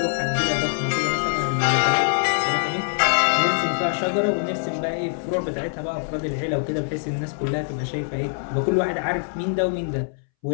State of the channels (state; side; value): silent; right; 63 dB below the other